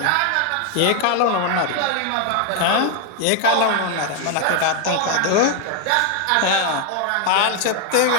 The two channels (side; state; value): both; different; correlation 0.01